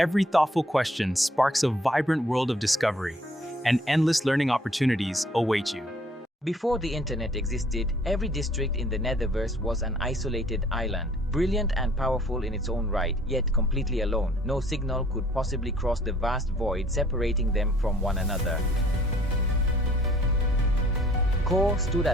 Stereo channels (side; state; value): both; normal; correlation 0.58